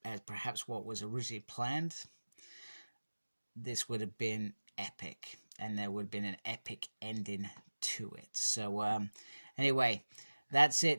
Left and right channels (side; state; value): both; inverted; correlation -1.00